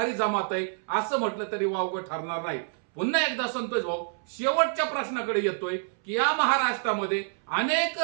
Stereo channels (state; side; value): silent; left; 60 dB below the other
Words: जमात आहे असं म्हटलं तरी वावगं ठरणार नाही. पुन्हा एकदा संतोष भाऊ शेवटच्या प्रश्नाकडे येतोय की या महाराष्ट्रामध्ये अनेक